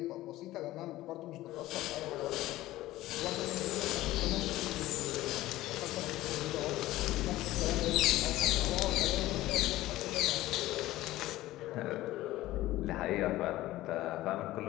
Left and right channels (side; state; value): right; quieter; 16.3 dB